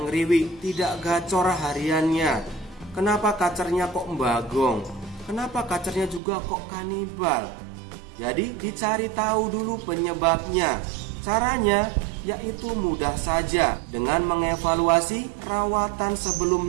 ngeriwik, tidak gacor hariannya? Kenapa kacernya kok bagong? Kenapa kacernya juga kok kanibal? Jadi dicari tahu dulu penyebabnya. Caranya yaitu mudah saja, dengan mengevaluasi rawatan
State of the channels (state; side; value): drops out; left; at 6.2 s